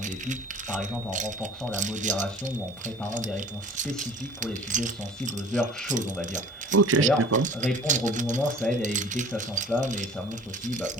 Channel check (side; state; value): both; normal; correlation 0.46